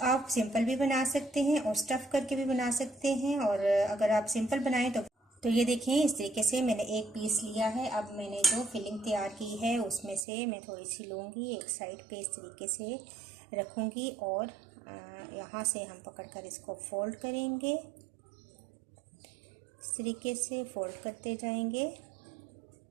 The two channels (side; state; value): left; drops out; at 10.2 s